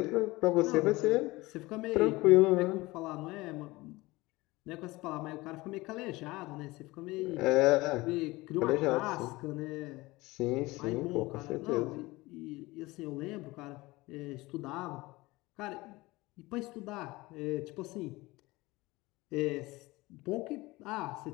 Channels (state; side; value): quieter; right; 21.1 dB